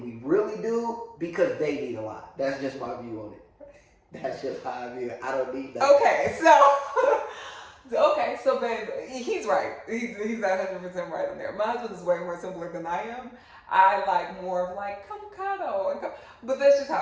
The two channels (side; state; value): both; identical; correlation 1.00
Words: we really do because they need a lot. That's just my view on it. That's just how I view it. I don't need that. Okay, so babe, he's right. He's 100% right in there. My husband is way more simpler than I am. I like more of like, come cuddle. But that's just how